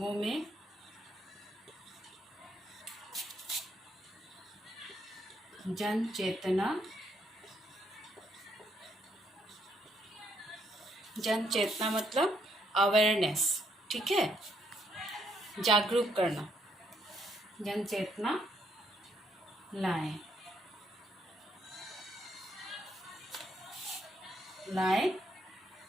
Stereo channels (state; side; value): normal; both; correlation 0.73